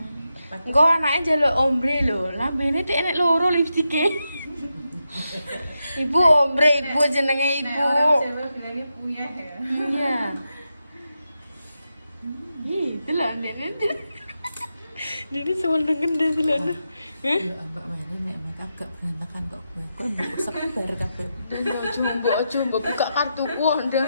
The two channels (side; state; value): both; inverted; correlation -0.87